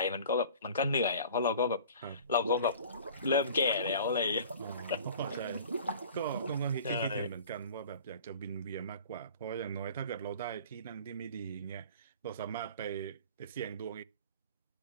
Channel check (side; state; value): both; inverted; correlation -0.44